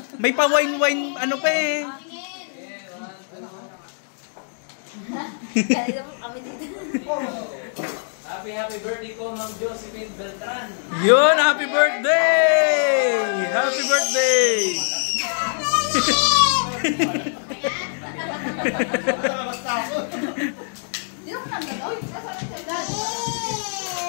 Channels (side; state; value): right; silent; digital silence